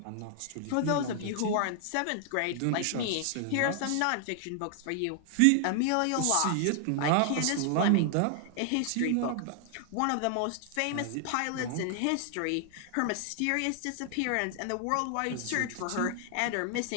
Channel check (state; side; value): different; both; correlation 0.00